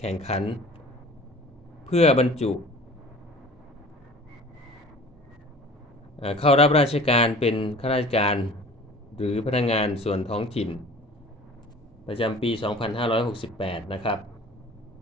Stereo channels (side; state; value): both; normal; correlation 0.44